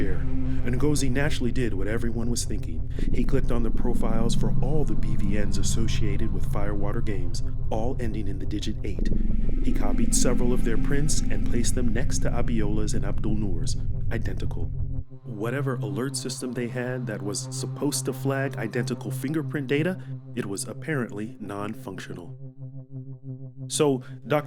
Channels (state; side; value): identical; both; correlation 1.00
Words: and Ngozi naturally did what everyone was thinking. He clicked on the profiles for all the BVNs associated with Firewater Games, all ending in the digit 8. He copied several of their prints and placed them next to Abiola's and Abdul Noor's, identical. Whatever alert system they had that was supposed to flag identical fingerprint data, it was apparently non-functional. So,